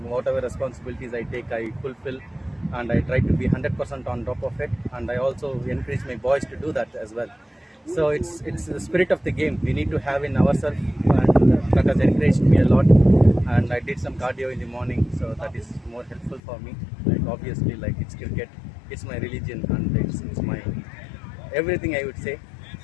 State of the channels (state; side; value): drops out; right; at 16.4 s